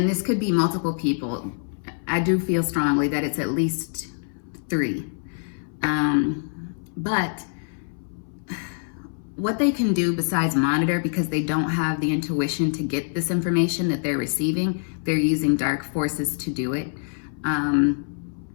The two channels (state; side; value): silent; right; 60 dB below the other